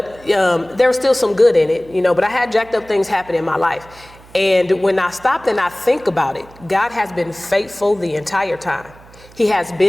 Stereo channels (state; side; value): noise; right; hum, 23 dB below the sound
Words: there was still some good in it, but I had jacked up things happen in my life. And when I stopped and I think about it, God has been faithful the entire time. He has